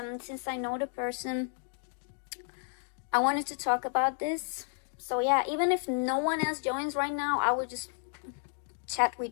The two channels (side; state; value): right; silent; 56 dB below the other